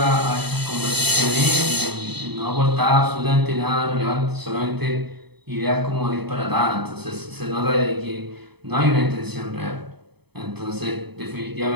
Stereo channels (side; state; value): left; late; 0.98 ms